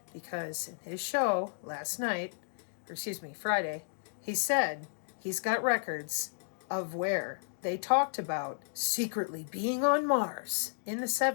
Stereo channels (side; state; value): right; silent; digital silence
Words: Because in his show last night, Friday, he said he's got records of where they talked about secretly being on Mars in the